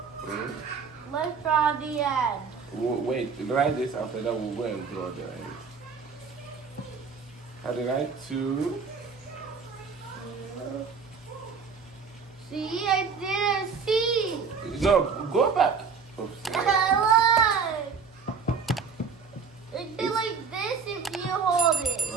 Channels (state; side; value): quieter; left; 5.6 dB